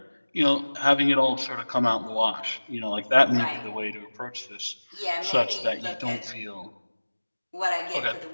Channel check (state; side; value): inverted; both; correlation -1.00